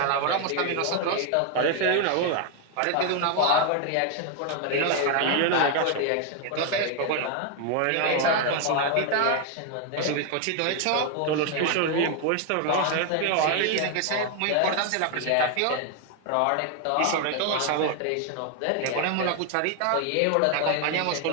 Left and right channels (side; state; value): both; different; correlation 0.01